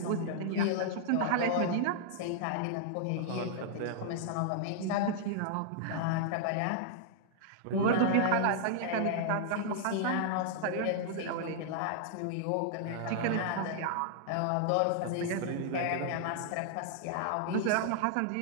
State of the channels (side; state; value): both; different; correlation -0.01